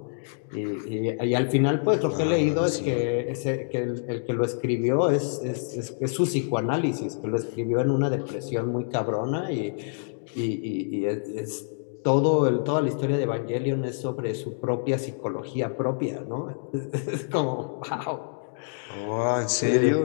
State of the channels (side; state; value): right; silent; digital silence